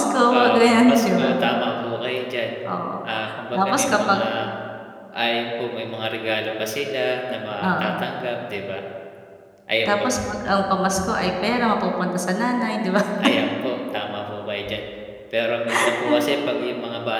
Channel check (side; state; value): both; identical; correlation 1.00